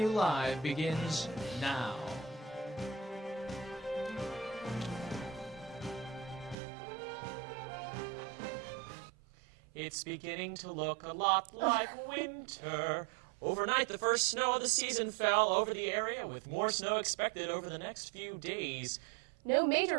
Live begins now. It's beginning to look a lot like winter. Overnight, the first snow of the season fell over the area, with more snow expected over the next few days. No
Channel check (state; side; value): drops out; left; at 6.6 s